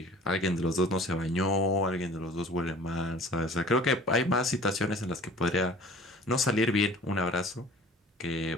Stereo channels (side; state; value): both; normal; correlation 0.47